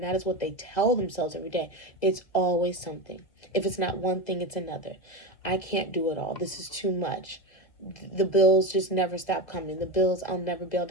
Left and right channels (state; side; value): late; right; 2.0 ms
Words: that is what they tell themselves every day. It's always something. If it's not one thing, it's another. I can't do it all. This is too much. The bills just never stop coming. The bills, I'll never be able